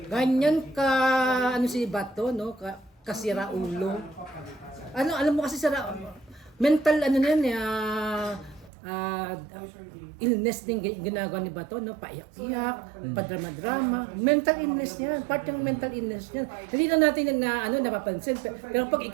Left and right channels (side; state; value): left; drops out; at 8.7 s